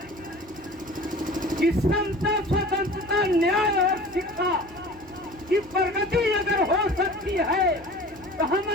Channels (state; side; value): normal; both; correlation 0.41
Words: कि समता, स्वतंत्रता, न्याय और शिक्षा की प्रगति अगर हो सकती है तो